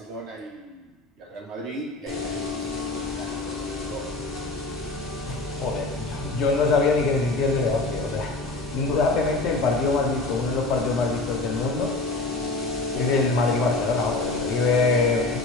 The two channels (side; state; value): right; quieter; 3.2 dB